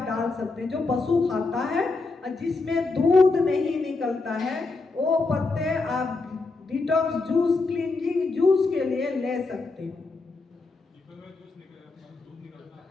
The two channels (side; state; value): right; quieter; 3.7 dB